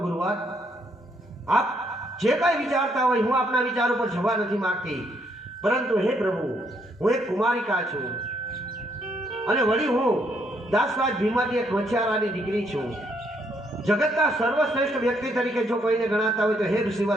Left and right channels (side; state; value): both; normal; correlation 0.72